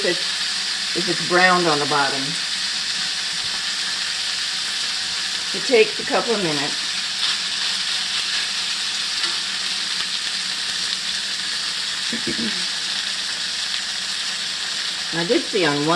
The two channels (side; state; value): both; identical; correlation 1.00